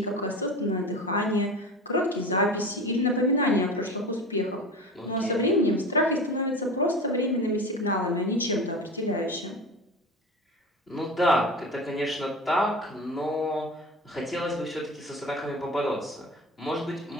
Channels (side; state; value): both; normal; correlation 0.31